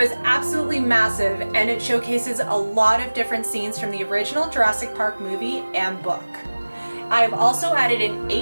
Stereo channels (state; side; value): inverted; both; correlation -1.00